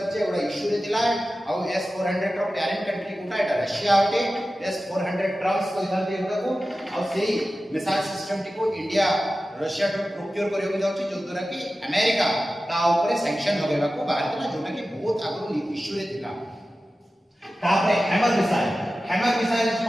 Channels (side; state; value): both; normal; correlation 0.94